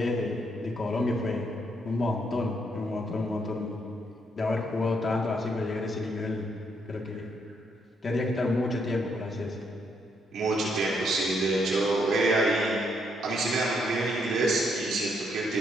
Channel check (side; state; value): both; normal; correlation 0.74